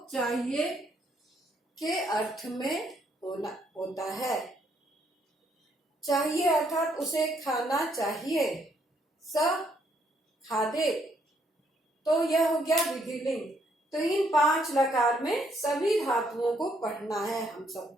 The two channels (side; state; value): both; normal; correlation 0.71